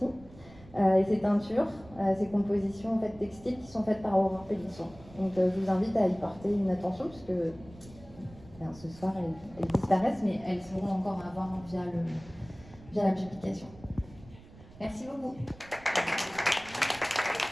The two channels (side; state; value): right; noise; rumble, 21 dB below the sound